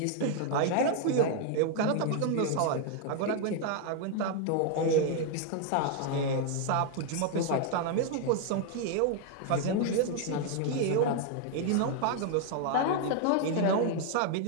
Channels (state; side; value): different; both; correlation 0.00